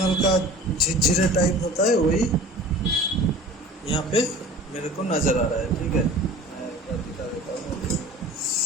का झिरझिरे टाइप होता है वही यहाँ पे मेरे को नज़र आ रहा है। ठीक है, मैं एक बार दिखा देता हूँ।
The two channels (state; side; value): normal; both; correlation 0.41